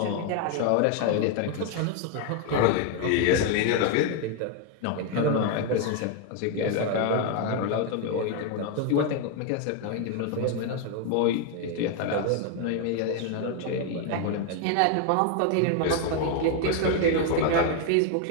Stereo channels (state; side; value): different; both; correlation 0.01